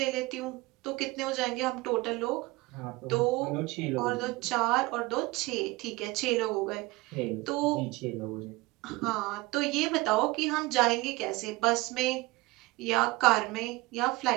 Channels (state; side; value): quieter; left; 21.7 dB